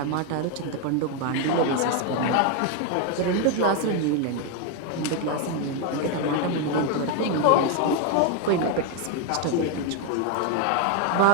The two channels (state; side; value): different; both; correlation 0.01